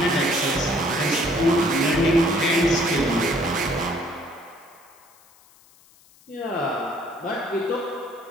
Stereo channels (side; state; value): left; noise; hiss, 28 dB below the sound